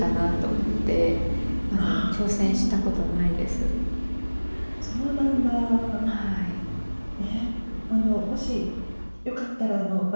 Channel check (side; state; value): both; inverted; correlation -1.00